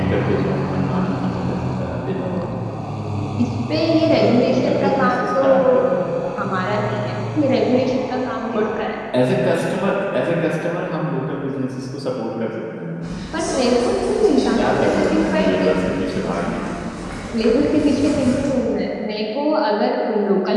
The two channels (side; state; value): both; identical; correlation 1.00